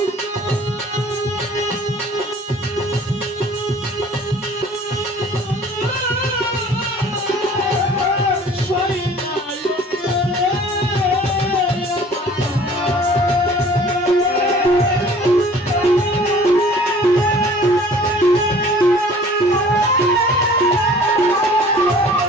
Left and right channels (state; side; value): normal; both; correlation 0.50